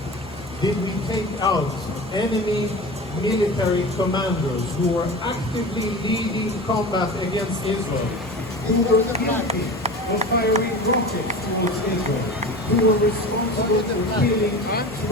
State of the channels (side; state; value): both; normal; correlation 0.32